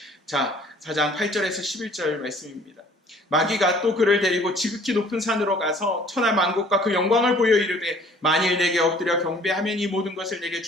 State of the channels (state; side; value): normal; both; correlation 0.55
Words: 자, 4장 8절에서 11절 말씀입니다. 마귀가 또 그를 데리고 지극히 높은 산으로 가서 천하 만국과 그 영광을 보여 이르되 만일 내게 엎드려 경배하면 이 모든 것을 내게